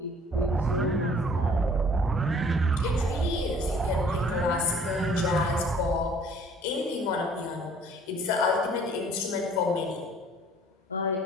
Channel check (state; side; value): normal; both; correlation 0.54